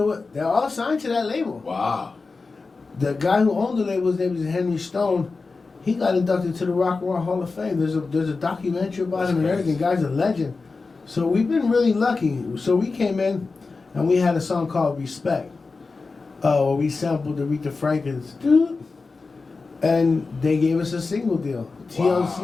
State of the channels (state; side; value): quieter; right; 4.1 dB